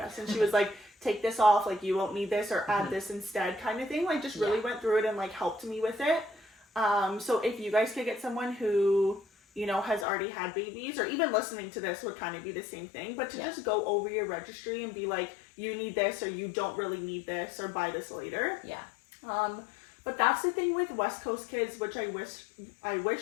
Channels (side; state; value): right; drops out; at 10.1 s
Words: And she was like, take this off, like you won't need this, or add this instead, kind of thing. Like just really went through it and like helped me with it. So if you guys could get someone who, you know, has already had babies, or even listening to this would kind of be the same thing, but to just go over your registry and be like, you need this, or you don't really need this, or buy this later. Yeah. But that's the thing with West Coast Kids, which I